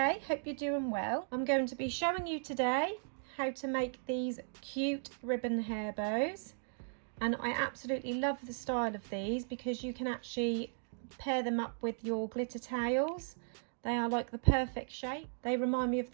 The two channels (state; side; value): silent; left; digital silence